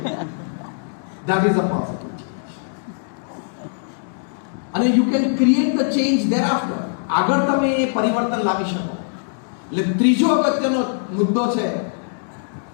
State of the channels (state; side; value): silent; right; digital silence